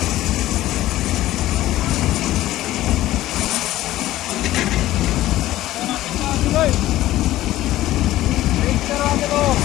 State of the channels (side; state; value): right; quieter; 15.3 dB